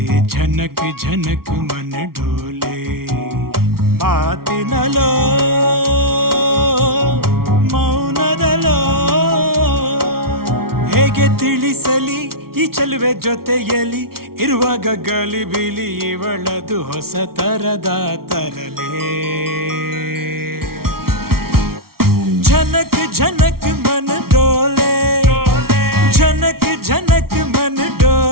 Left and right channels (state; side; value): late; left; 0.94 ms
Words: झनक झनक मन डोले ಮಾತಿನಲೋ ಮೌನದಲೋ ಹೇಗೆ ತಿಳಿಸಲಿ ಈ ಚೆಲುವೆ ಜೊತೆಯಲ್ಲಿ ಇರುವಾಗ ಗಲಿಬಿಲಿ ಇವಳದು ಹೊಸ ತರದ ತರಲೇ ಝನಕ್ ಝನಕ್ ಮನ ಡೋಲೆ ಝನಕ್ ಝನಕ್ ಮನ